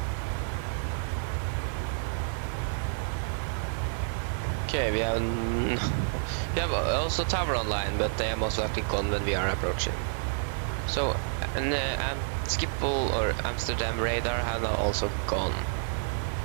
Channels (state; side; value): silent; left; digital silence